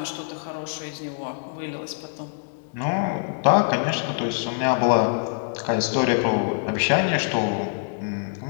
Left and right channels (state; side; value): silent; right; digital silence